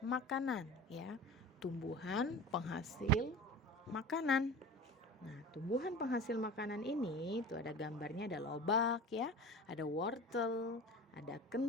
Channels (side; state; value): both; normal; correlation 0.35